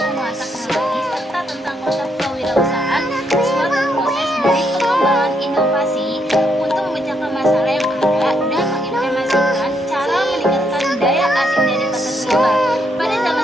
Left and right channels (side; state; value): both; normal; correlation 0.76